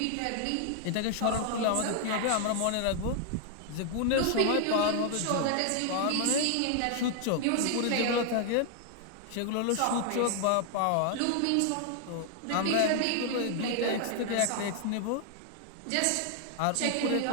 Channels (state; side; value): different; both; correlation 0.00